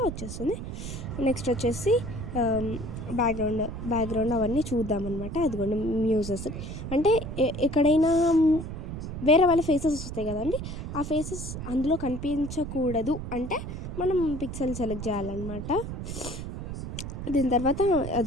వచ్చేస్తుంది. నెక్స్ట్ వచ్చేసి బ్యాక్గ్రౌండ్ అవన్నీ చూద్దామన్నమాట. అదిగోండి, మ్యూజెస్ అంటే ఎక్కడైనా వేరే వాళ్ళ ఫేసెస్ వస్తాయి కదండి, ఆ ఫేసెస్ అందులో కనిపించకూడదు అంటే మనం పిక్సెల్ సెలెక్ట్ చేయాలన్నమాట. దీని తర్వాత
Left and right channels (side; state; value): right; noise; rumble, 7 dB below the sound